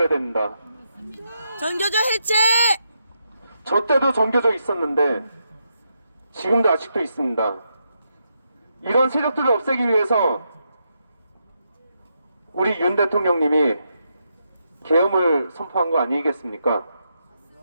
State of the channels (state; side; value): inverted; both; correlation -0.82